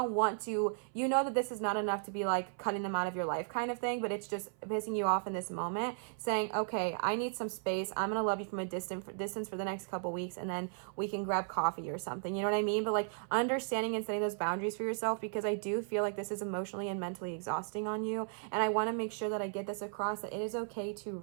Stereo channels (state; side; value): silent; left; 54 dB below the other